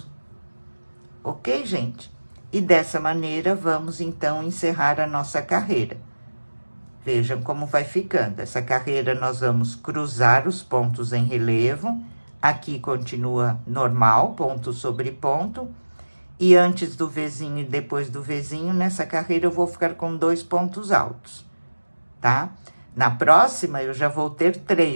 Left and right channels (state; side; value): inverted; both; correlation -1.00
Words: Ok, gente? E dessa maneira, vamos então encerrar a nossa carreira. Vejam como vai ficando. Essa carreira nós vamos cruzar os pontos em relevo. Aqui continua normal, ponto sobre ponto. E antes do Vzinho e depois do Vzinho, nessa carreira eu vou ficar com 2 pontos altos, tá? Na próxima, eu já vou ter